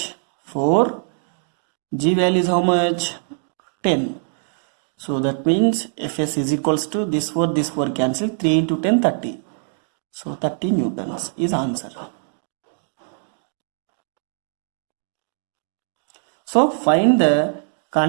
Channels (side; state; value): left; silent; digital silence